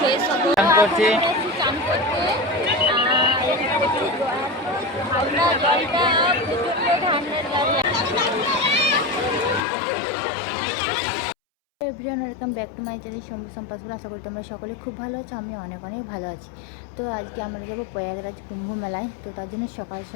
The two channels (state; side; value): drops out; right; at 9.6 s